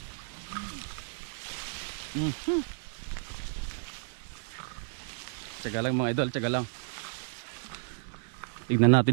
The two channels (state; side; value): silent; left; 56 dB below the other